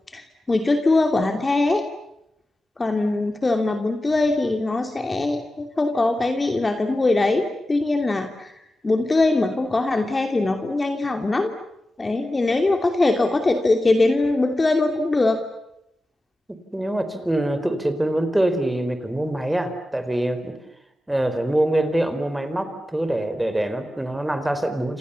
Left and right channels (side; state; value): both; normal; correlation 0.93